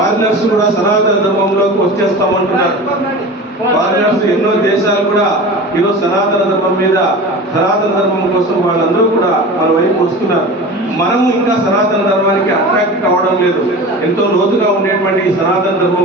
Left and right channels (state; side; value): normal; both; correlation 0.34